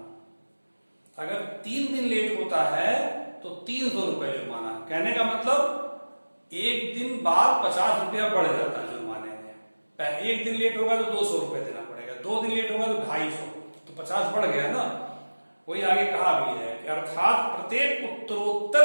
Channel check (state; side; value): inverted; both; correlation -1.00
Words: अगर 3 दिन लेट होता है तो 300 रुपए जुर्माना। कहने का मतलब एक दिन बाद 50 रुपया बढ़ जाता है जुर्माने में। एक दिन लेट होगा तो 200 रुपए देना पड़ेगा, 2 दिन लेट होगा तो 250, तो 50 बढ़ गया ना। वही आगे कहा भी है कि अर्थात प्रत्येक